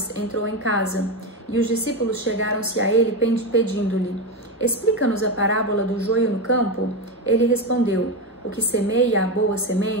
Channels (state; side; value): normal; both; correlation 0.15